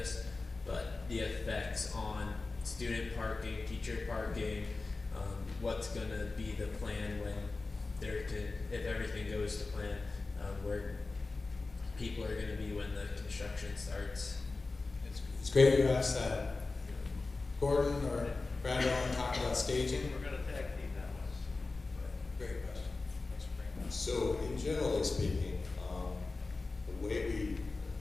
but the effects on student parking, teacher parking, what's going to be the plan when if everything goes to plan, where people are going to be when the construction starts. It's great you asked that. Gordon or Brad want to talk about staging? We're going to tag team that one. Great question. Thanks for bringing that. So, in generally speaking, the way let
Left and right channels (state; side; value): quieter; right; 3.6 dB